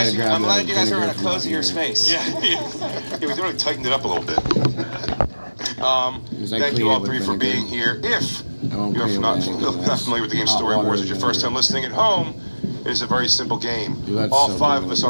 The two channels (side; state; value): both; inverted; correlation -1.00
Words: you guys are in a cozier space. Yeah, we really tightened it up a little bit. Thank you all 3 for being here. If you're not familiar with the game Story Wars, it's your first time listening at home, it is a very simple game. All 5 of us